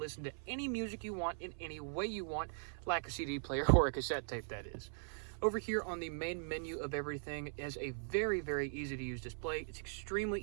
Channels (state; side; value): silent; left; 51 dB below the other